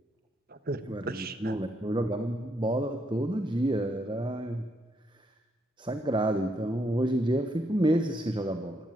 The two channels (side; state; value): both; normal; correlation 0.76